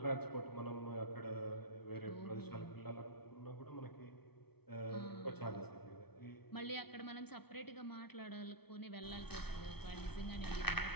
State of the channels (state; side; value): late; right; 0.97 ms